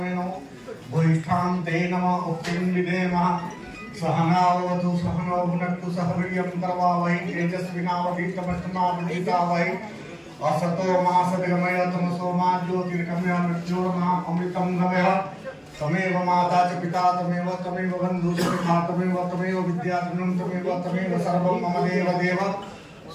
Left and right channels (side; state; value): both; identical; correlation 1.00